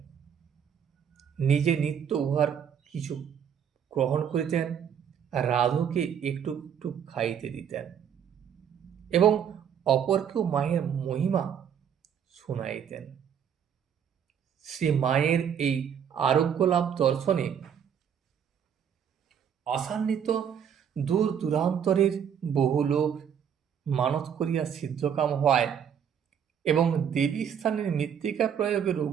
নিজে নিত্য উহার কিছু গ্রহণ করিতেন, রাধুকে একটু একটু খাইতে দিতেন এবং অপরকেও মায়ের মহিমা শুনাইতেন। শ্রী মায়ের এই আরোগ্য লাভ দর্শনে আশান্বিত দূর দূরান্তরের বহু লোক মানত করিয়া সিদ্ধকাম হওয়ায় এবং দেবী স্থানের মৃত্তিকা প্রয়োগে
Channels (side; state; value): left; quieter; 8.3 dB